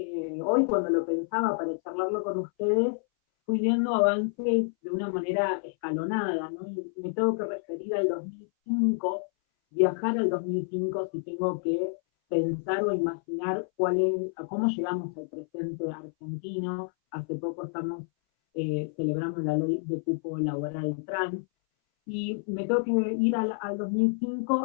hoy cuando lo pensaba para charlarlo con ustedes, fui viendo avances de una manera escalonada, ¿no? Y me tengo que referir al 2005, viajar al 2005 si tengo que pensar o imaginar cómo llegamos al presente argentino. Hace poco estamos celebrando la ley de cupo laboral trans, y me tengo que ir al 2005,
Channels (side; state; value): right; silent; 59 dB below the other